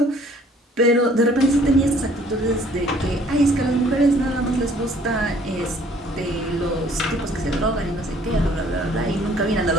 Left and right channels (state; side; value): normal; both; correlation 0.58